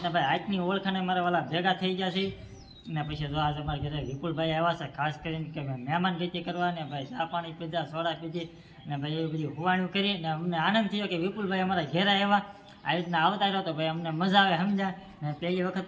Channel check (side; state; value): both; identical; correlation 1.00